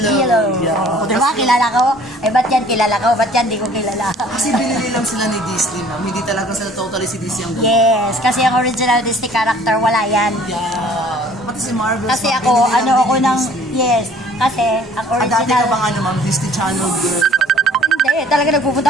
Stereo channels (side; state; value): both; normal; correlation 0.54